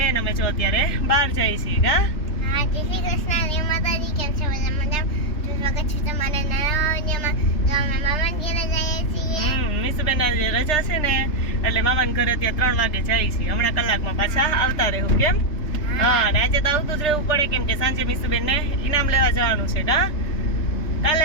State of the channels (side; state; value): right; late; 3.3 ms